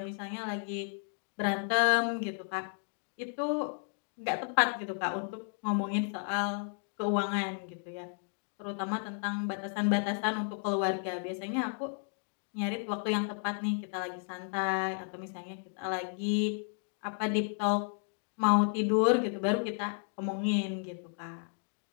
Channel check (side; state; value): right; silent; 56 dB below the other